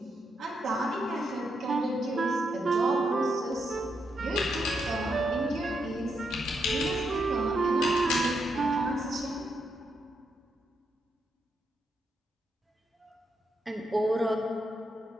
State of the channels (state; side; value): normal; both; correlation 0.81